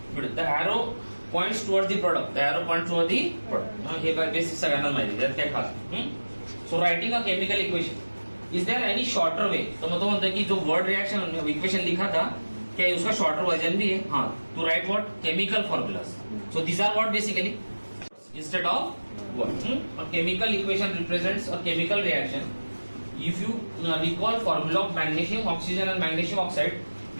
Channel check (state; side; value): inverted; both; correlation -1.00